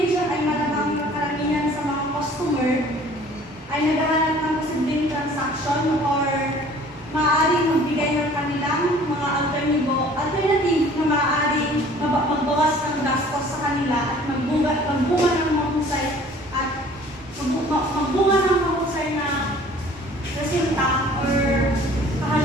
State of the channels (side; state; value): both; normal; correlation 0.51